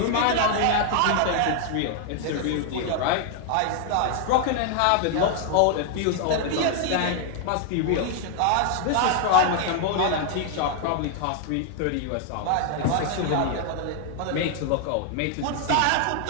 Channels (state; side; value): different; both; correlation 0.00